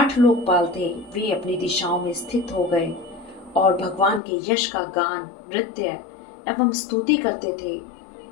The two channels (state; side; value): drops out; right; at 4.2 s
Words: लोकपाल थे वे अपनी दिशाओं में स्थित हो गए और भगवान के यश का गान, नृत्य एवं स्तुति करते थे।